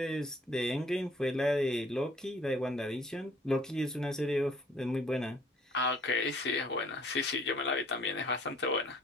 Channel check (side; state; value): both; normal; correlation 0.57